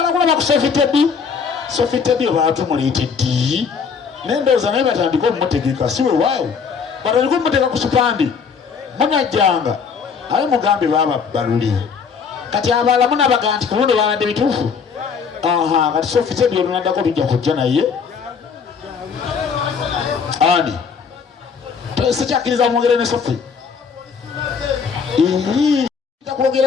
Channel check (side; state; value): right; quieter; 6.0 dB